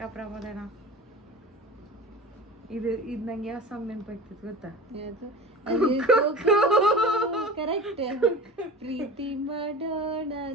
ಪ್ರಮೋದನ. ಇದು ನಂಗೆ ಯಾವ ಸಾಂಗ್ ನೆನಪಾಗ್ತಿತ್ತು ಗೊತ್ತಾ? ಕರೆಕ್ಟ್. ಪ್ರೀತಿ ಮಾಡೋಣ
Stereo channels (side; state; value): both; normal; correlation 0.35